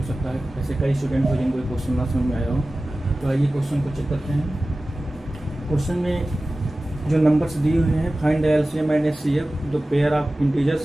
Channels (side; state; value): both; normal; correlation 0.96